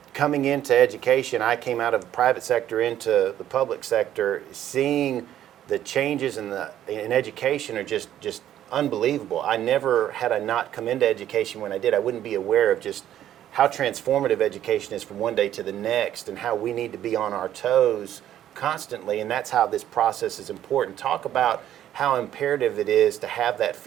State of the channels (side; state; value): left; quieter; 11.6 dB